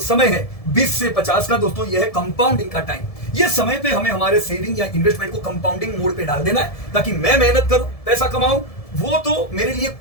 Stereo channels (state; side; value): late; right; 1.7 ms